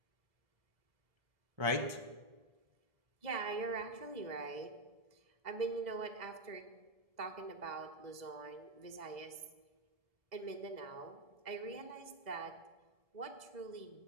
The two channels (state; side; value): late; left; 2.0 ms